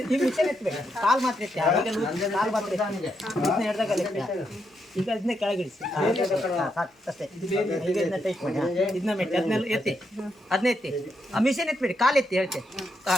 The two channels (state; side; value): normal; both; correlation 0.81